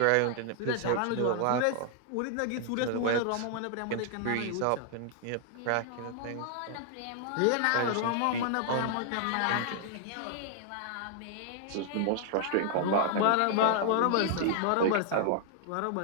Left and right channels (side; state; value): both; different; correlation 0.00